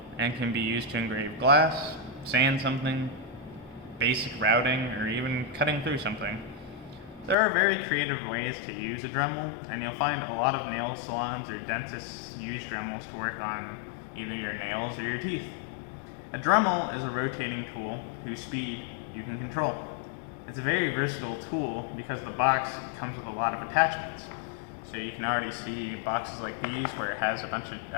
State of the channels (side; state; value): right; drops out; at 7.4 s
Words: and can be used to engrave glass, sand something, basic routing, or even cutting through something. There are very creative ways to use a Dremel, and you'll find a lot of nail salons or dentists use Dremels to work on either your nails or your teeth. A Dremel is a rotating tool whose speed you can control. It's a very versatile tool because the box comes with a lot of attachments. So you can already see boxes like these where it has a bunch of